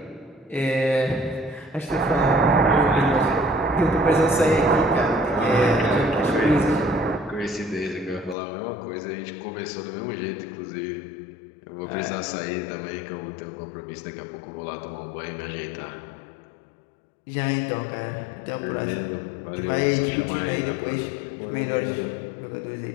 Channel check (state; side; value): drops out; right; at 8.3 s